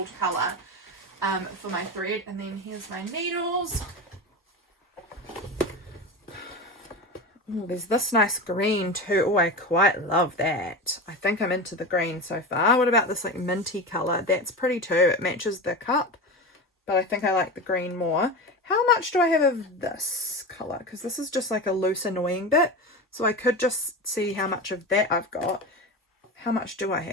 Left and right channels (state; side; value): normal; both; correlation 0.24